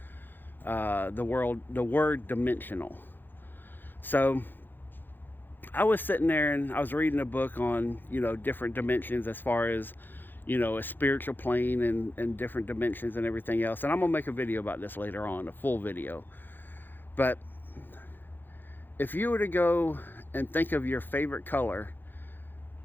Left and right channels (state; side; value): late; right; 0.094 ms